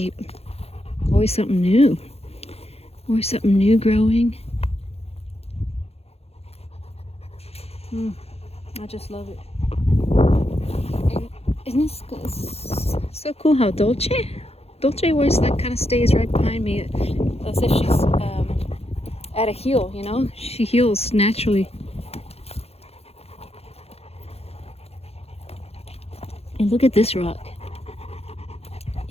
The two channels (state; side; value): late; right; 0.29 ms